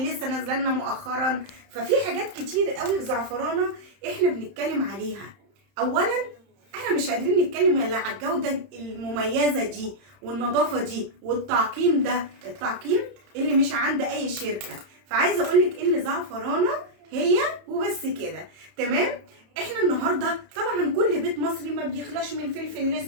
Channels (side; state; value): left; late; 31 ms